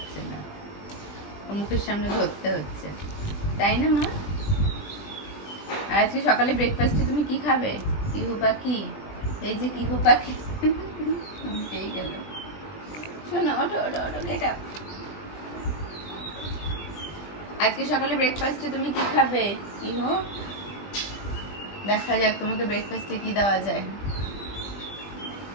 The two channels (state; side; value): late; right; 20 ms